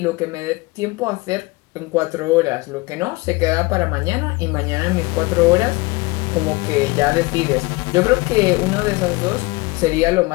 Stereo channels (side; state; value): right; quieter; 23.6 dB